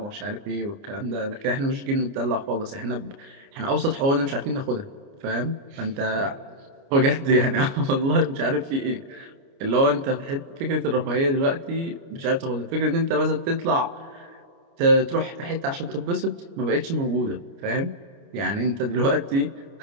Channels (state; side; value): late; left; 29 ms